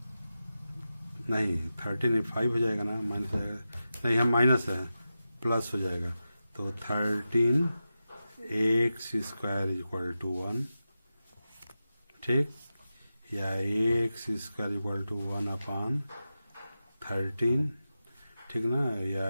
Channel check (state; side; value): inverted; both; correlation -0.92